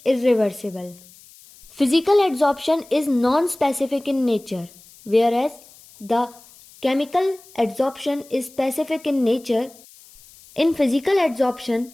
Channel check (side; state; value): left; noise; hiss, 24 dB below the sound